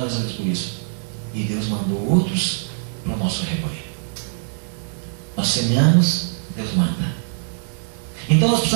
a Deus por isso. E Deus mandou outros para o nosso rebanho. Nós semeamos, Deus manda. Então nós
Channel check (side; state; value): left; silent; 64 dB below the other